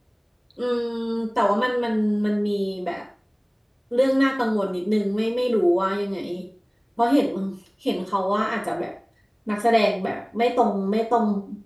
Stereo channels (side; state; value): both; identical; correlation 1.00